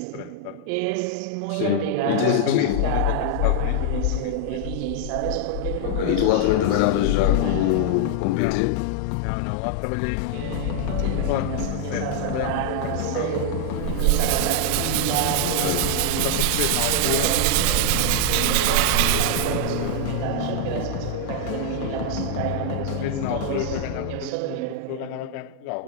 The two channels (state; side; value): different; both; correlation -0.01